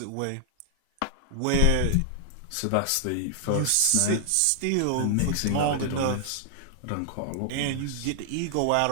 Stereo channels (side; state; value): both; different; correlation 0.00